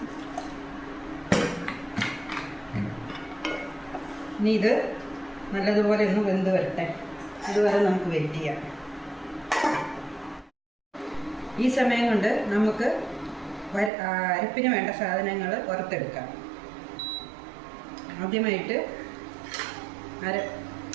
ഇനി ഇത് നല്ലതുപോലെ ഒന്ന് വെന്ത് വരട്ടെ. അതുവരെ നമുക്ക് വെയിറ്റ് ചെയ്യാം. ഈ സമയം കൊണ്ട് നമുക്ക് അരപ്പിന് വേണ്ട സാധനങ്ങൾ വറുത്തെടുക്കാം. ആദ്യമായിട്ട്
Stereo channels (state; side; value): drops out; left; at 13.9 s